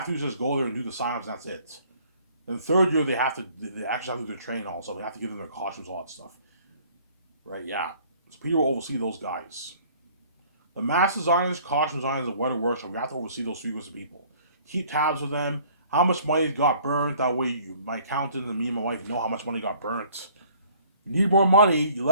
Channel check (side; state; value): both; inverted; correlation -0.56